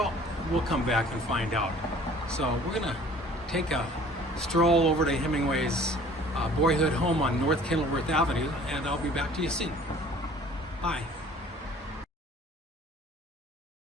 we'll come back and find out. So we're gonna take a stroll over to Hemingway's boyhood home on North Kenilworth Avenue, and I'll be back to you soon. Bye.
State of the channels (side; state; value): both; normal; correlation 0.51